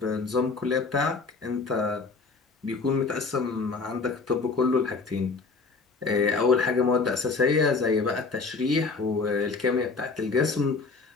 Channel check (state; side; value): quieter; right; 4.2 dB